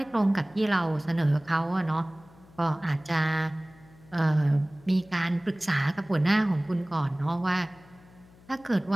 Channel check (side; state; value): left; noise; hum, 26 dB below the sound